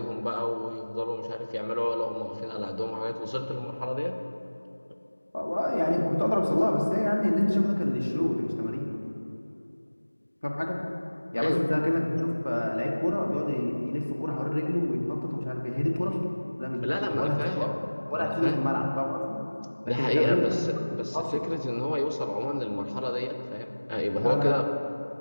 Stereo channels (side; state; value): both; inverted; correlation -1.00